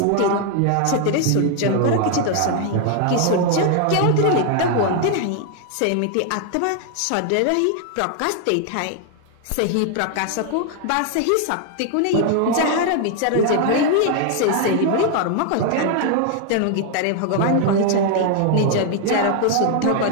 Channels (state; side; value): different; both; correlation 0.00